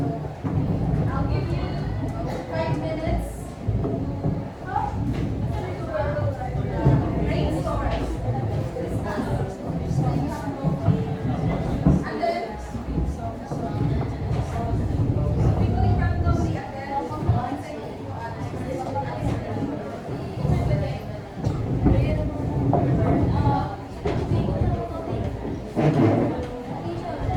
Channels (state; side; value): identical; both; correlation 1.00